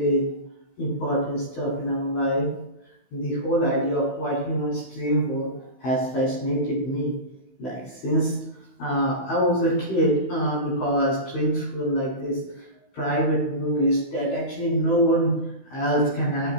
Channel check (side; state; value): right; late; 16 ms